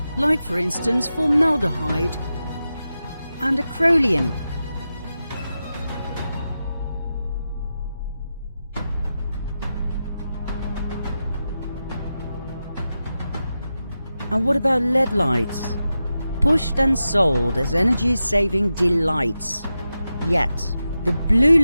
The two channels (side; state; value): both; inverted; correlation -0.91